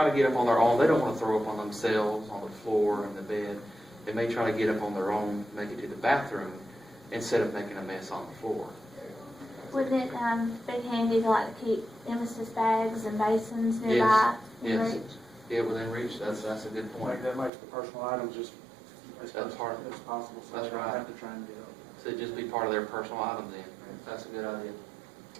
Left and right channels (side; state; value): left; drops out; at 17.5 s